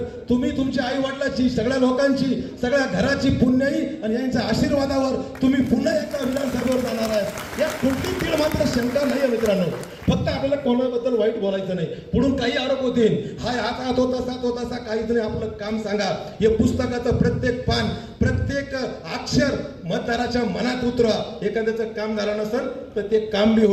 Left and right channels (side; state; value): both; identical; correlation 1.00